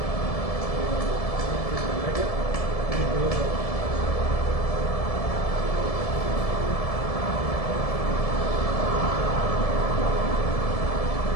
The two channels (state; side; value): late; right; 1.7 ms